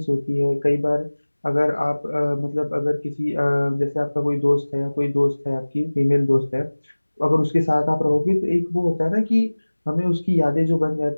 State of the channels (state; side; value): inverted; both; correlation -1.00